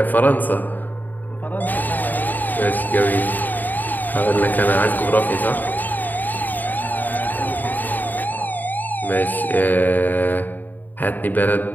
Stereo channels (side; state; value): right; late; 0.087 ms